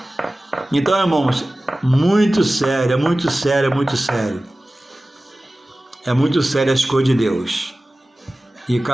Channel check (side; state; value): both; normal; correlation 0.97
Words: Então, irmãos, muito sério, é muito sério, é muito sério. É muito sério as coisas de Deus. E